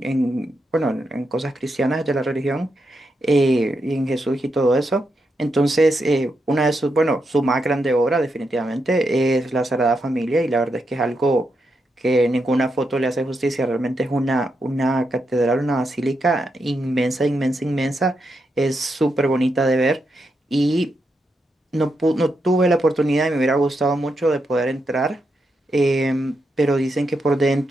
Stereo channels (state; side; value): normal; both; correlation 0.84